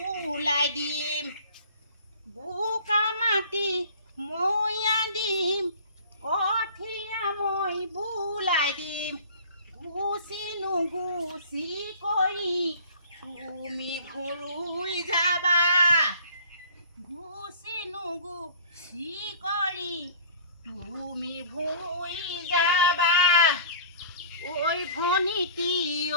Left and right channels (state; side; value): inverted; both; correlation -0.46